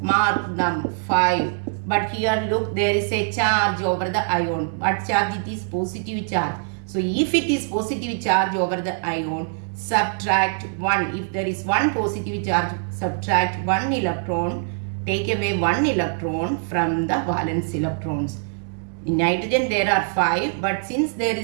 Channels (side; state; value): left; silent; 63 dB below the other